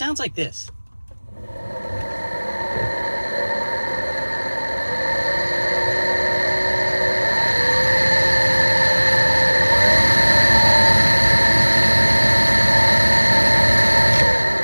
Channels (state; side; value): inverted; both; correlation -1.00